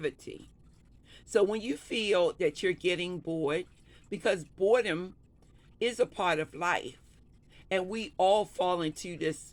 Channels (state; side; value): identical; both; correlation 1.00